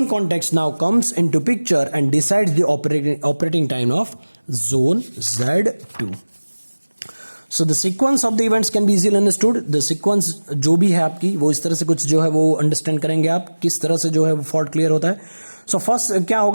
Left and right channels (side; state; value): both; inverted; correlation -1.00